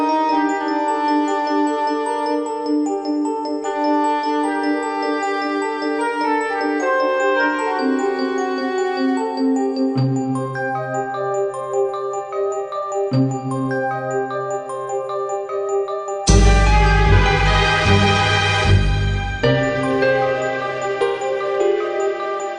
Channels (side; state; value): both; identical; correlation 1.00